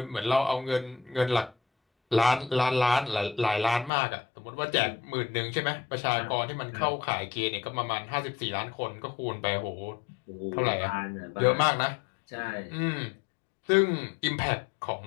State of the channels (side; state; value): right; drops out; at 3.9 s